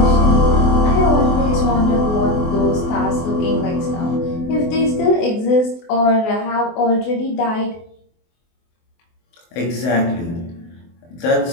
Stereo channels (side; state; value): right; late; 24 ms